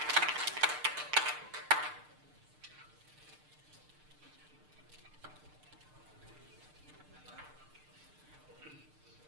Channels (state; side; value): late; left; 6.6 ms